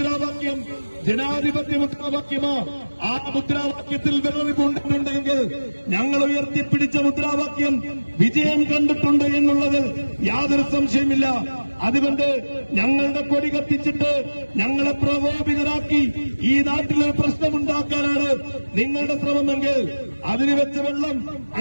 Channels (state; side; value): inverted; both; correlation -1.00